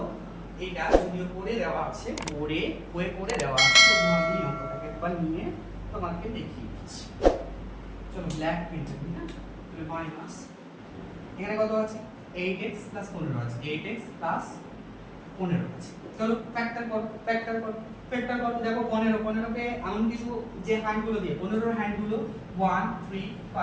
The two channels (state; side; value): identical; both; correlation 1.00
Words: এটা, যদিও করে দেওয়া আছে, করে দেওয়া আছে, তো আমি অঙ্কটাকে একবার নিয়ে তোমাকে দেখিয়ে দিচ্ছি। চলো ব্ল্যাক প্রিন্ট করি। হ্যাঁ তাহলে মাইনাস এখানে কত আছে, 8x + 15 আছে, 8x + 15 আছে। চলো ফ্যাক্টর করো, দেখো 15 কে এমন কিছু যে হ্যান্ডগুলো দিয়ে 15 এর হ্যান্ডগুলো 1 3